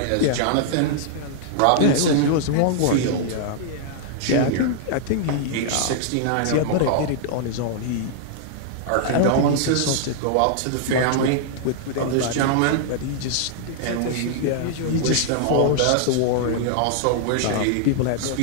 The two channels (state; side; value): different; both; correlation -0.01